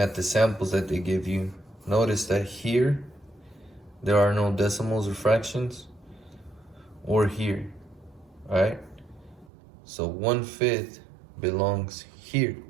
the samples that they give you, notice that here there are no decimals or fractions, or here. All right. So 1/5 belongs here.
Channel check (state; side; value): drops out; left; at 9.5 s